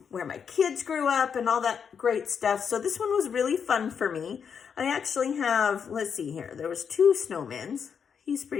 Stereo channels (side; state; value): right; quieter; 6.9 dB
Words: where my kids grew up and all that great stuff. So this one was really fun for me. I actually have, let's see here, there was 2 snowmen. He's